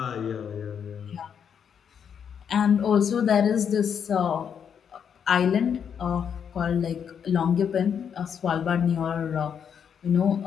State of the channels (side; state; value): right; quieter; 7.7 dB